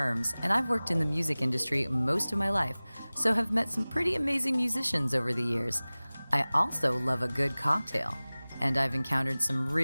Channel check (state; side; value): inverted; both; correlation -0.99